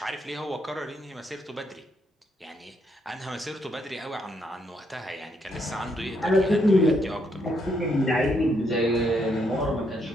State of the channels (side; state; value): both; normal; correlation 0.75